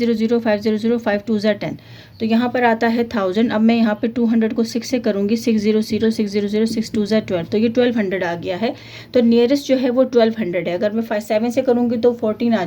500 5 2 10। तो यहाँ पर आता है 1000। अब मैं यहाँ पे 200 को 6 से करूँगी, 600 600 6 2 12, तो ये 1200 आ गया है। तो नियरेस्ट जो है वो 1200 है। अगर मैं 7 से करूँगी तो 14 आ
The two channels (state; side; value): identical; both; correlation 1.00